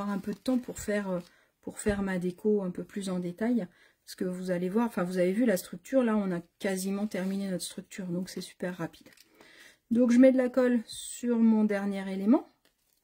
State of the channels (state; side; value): identical; both; correlation 1.00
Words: un peu de temps pour faire ma déco un peu plus en détail. Parce que vous allez voir, enfin vous avez vu la structure, là on a quasiment terminé notre structure, donc c'est super rapide. Donc je mets de la colle sur mon dernier élément